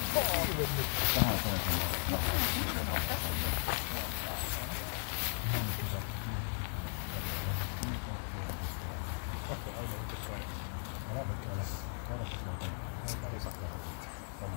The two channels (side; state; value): right; silent; digital silence